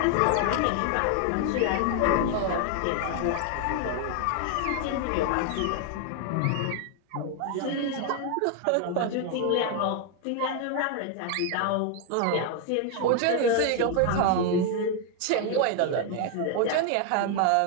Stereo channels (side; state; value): both; different; correlation 0.00